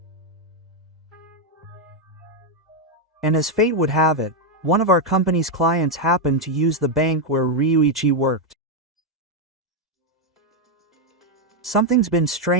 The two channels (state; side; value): normal; both; correlation 0.02